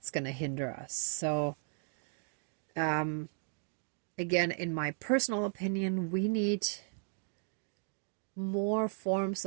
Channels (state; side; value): silent; left; 54 dB below the other